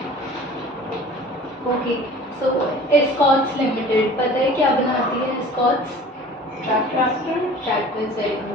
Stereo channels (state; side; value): normal; both; correlation 0.44